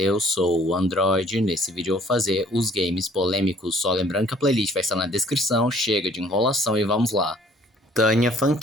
sou o Android. Nesse vídeo eu vou fazer os games polêmicos, só lembrando que a playlist vai estar na descrição. Chega de enrolação e vamos lá. Tânia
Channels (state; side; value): normal; both; correlation 0.57